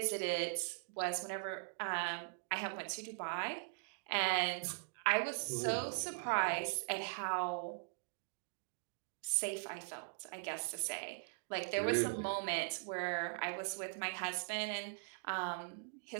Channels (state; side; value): silent; left; digital silence